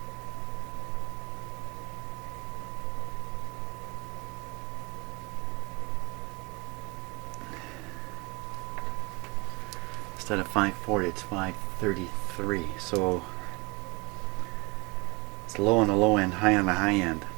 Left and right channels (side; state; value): left; quieter; 27.4 dB